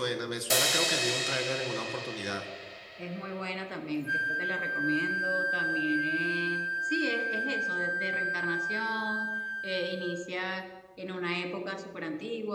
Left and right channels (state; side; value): identical; both; correlation 1.00